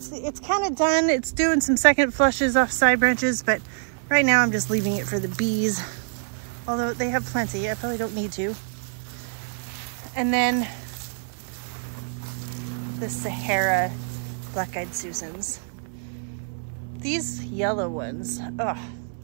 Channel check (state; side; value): silent; left; 61 dB below the other